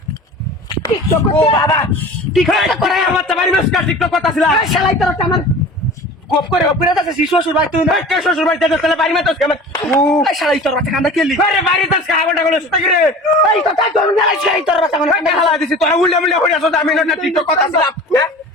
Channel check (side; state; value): both; normal; correlation 0.39